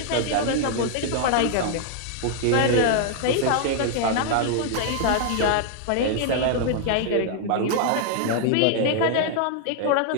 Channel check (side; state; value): both; different; correlation 0.00